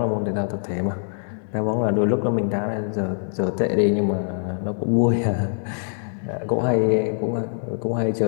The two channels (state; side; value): silent; right; digital silence